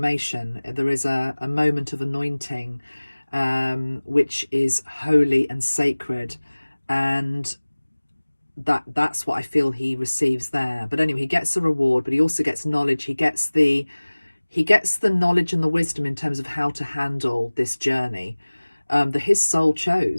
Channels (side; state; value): both; inverted; correlation -1.00